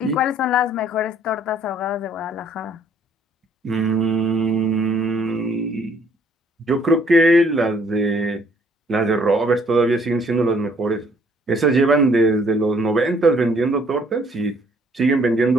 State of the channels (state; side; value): normal; both; correlation 0.63